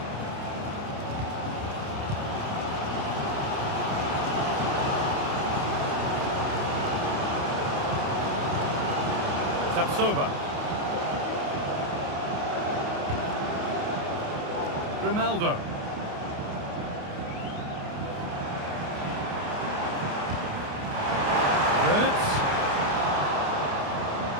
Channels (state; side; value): late; left; 29 ms